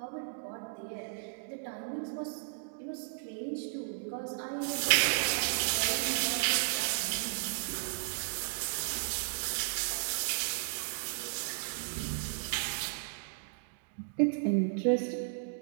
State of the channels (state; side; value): silent; left; digital silence